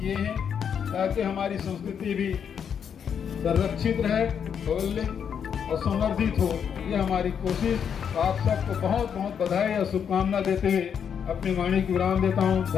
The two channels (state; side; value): quieter; right; 7.7 dB